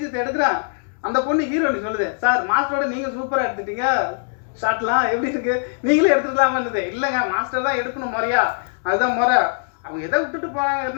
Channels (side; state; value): right; silent; 63 dB below the other